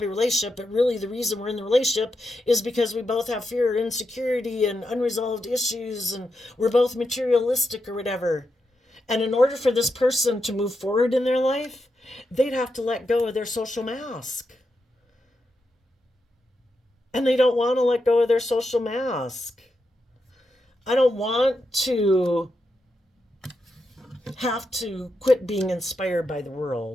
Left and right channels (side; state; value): both; normal; correlation 0.85